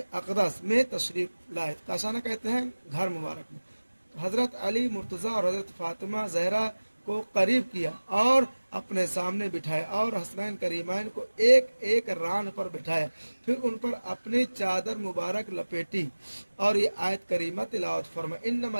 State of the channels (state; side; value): inverted; both; correlation -1.00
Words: अक़दस में तशरीफ़ लाए। काशाना कहते हैं घर मुबारक में। हज़रत अली, मुर्तज़ा और हज़रत फातिमा ज़हरा को करीब किया और अपने सामने बिठाया और हसनैन करीमैन को एक एक रान पर बिठाया, फिर उन पर अपनी चादर मुबारक लपेटी और ये आयत करीमा तिलावत फरमा, इन्नमा